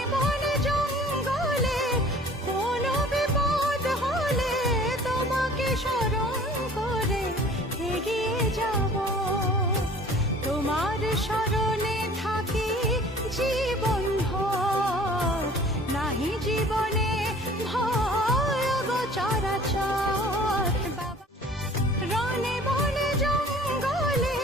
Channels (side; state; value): both; normal; correlation 0.49